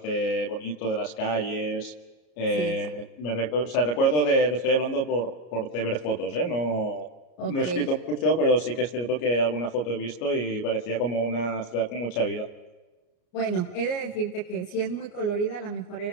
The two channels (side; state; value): right; late; 33 ms